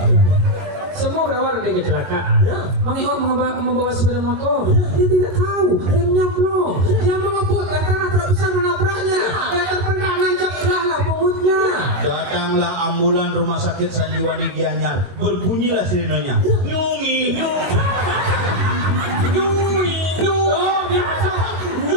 Semua berawal dari kecelakaan. Mang Eo membawa sepeda motor. Dia tidak tahu remnya blong. Dia mengebut, tanah tak bisa menabraknya. Dia terpental nancap lah pungutnya. Datanglah ambulan rumah sakit Sanjiwani Gianyar. Berbunyilah sirenenya. Nyungi.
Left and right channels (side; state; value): left; late; 22 ms